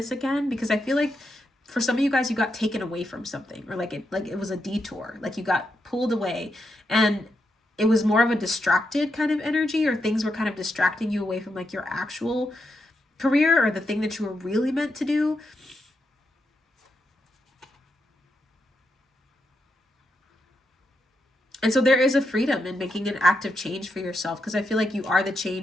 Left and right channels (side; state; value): both; normal; correlation 0.84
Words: again, because I feel like for some of you guys, you got taken away from something, or like it was a detour, like you got pulled away, and it was more of a distracted kind of energy, or things were kind of distracting you away from like your actual career or the thing that you were really meant to do. And so there is a freedom in making an active change for yourself, because I feel like you are the